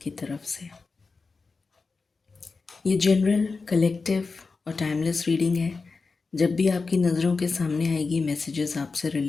की तरफ से। ये जनरल, कलेक्टिव और टाइमलेस रीडिंग है। जब भी आपकी नज़रों के सामने आएगी मैसेजेस आपसे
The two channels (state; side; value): quieter; right; 4.3 dB